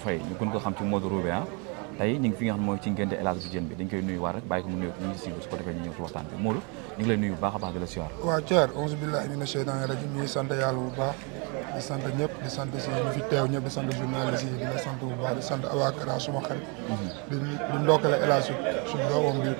ñu gën ko xam ci Modou Roubé tey ñu ngi fi nga xam mooy ci ngénte El Hadj Diène bi dañ koy nuyu waar rek bàyyi ko mu nuyu ñu ngi siiw su ko defee ñu ñëw ci waxtaan bi Modou ñu ngi lay nuyu bu baax a baax di la siyaar. waaw Thier auzu billahi mina sheytaani rajim ñuy sant yàlla bu baax di sant ñëpp di sant si ñu fi teew ñëpp di sant journaliste yi di la sant bu baax di sant Abakara suma xarit di ndokkale El Hadj suñu doomam bi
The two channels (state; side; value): quieter; left; 33.2 dB